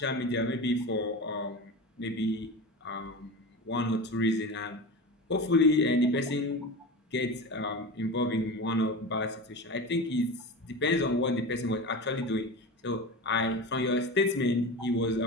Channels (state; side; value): normal; both; correlation 0.27